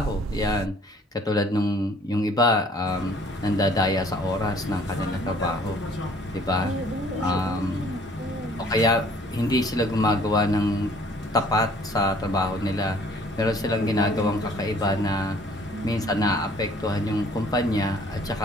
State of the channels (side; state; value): both; normal; correlation 0.56